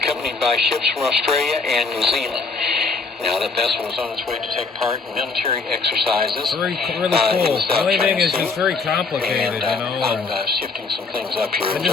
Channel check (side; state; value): right; quieter; 4.3 dB